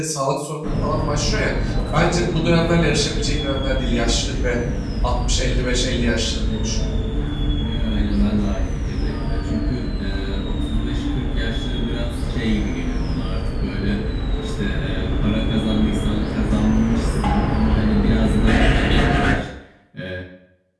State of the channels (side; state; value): both; identical; correlation 1.00